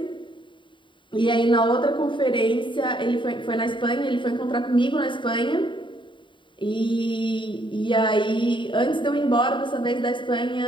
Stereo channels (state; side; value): late; right; 0.23 ms